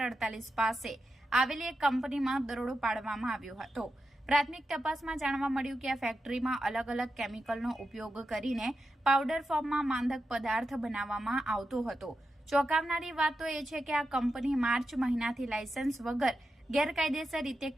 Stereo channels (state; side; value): normal; both; correlation 0.88